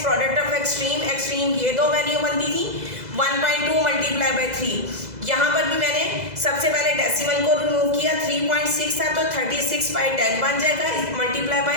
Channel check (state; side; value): late; left; 2.0 ms